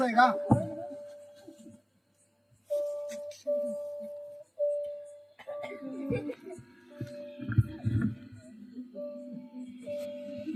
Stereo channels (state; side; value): identical; both; correlation 1.00